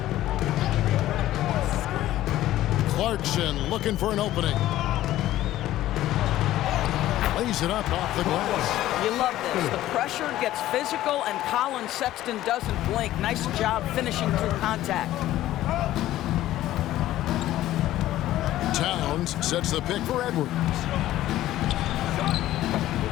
Clarkson looking for an opening. Lays it up off the glass. You love this. The pressure gets physical, and Colin Sexton doesn't blink. Nice job finishing through contact. Towns sets the pick for Edwards.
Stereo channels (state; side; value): quieter; right; 14.3 dB